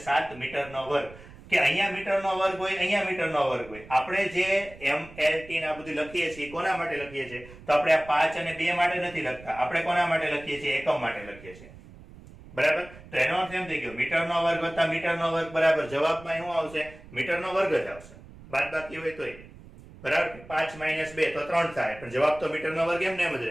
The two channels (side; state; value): right; noise; rumble, 19 dB below the sound